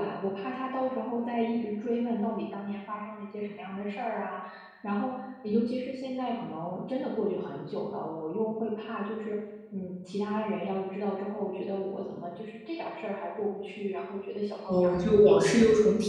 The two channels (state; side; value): identical; both; correlation 1.00